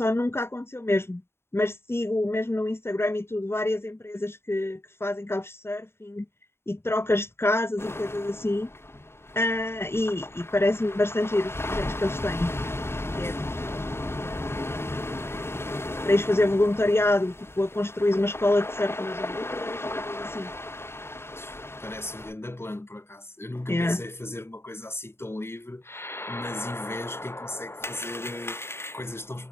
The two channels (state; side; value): late; right; 0.12 ms